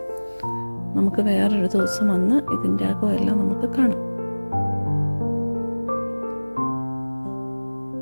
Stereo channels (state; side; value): inverted; both; correlation -1.00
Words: നമുക്ക് വേറൊരു ദിവസം വന്ന് ഇതിൻ്റെ അകമെല്ലാം നമുക്ക് കാണാം.